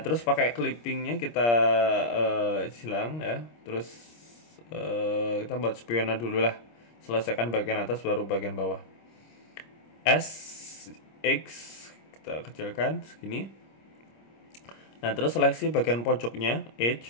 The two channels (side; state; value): right; late; 26 ms